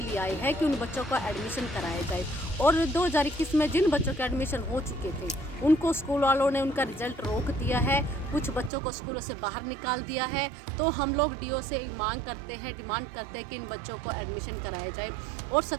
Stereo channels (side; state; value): left; drops out; at 8.7 s